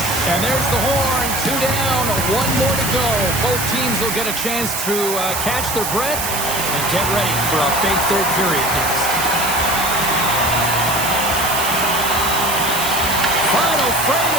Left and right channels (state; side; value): noise; right; hiss, 3 dB below the sound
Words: And there's the horn. 2 down, 1 more to go. Both teams will get a chance to catch their breath and get ready for a big third period next. Final frame